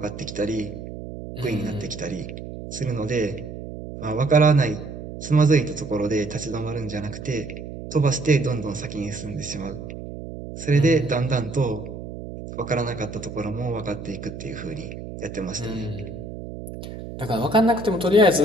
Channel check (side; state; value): right; noise; hum, 10 dB below the sound